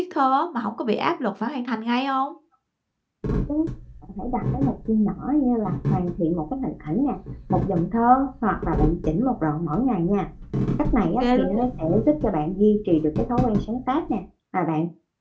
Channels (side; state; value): both; identical; correlation 1.00